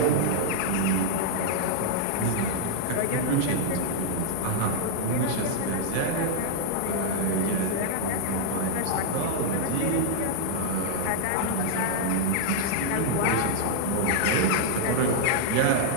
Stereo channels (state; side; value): different; both; correlation -0.01